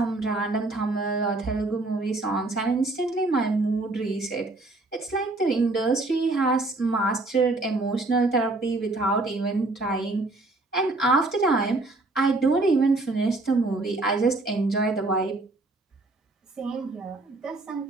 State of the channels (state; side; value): quieter; left; 3.1 dB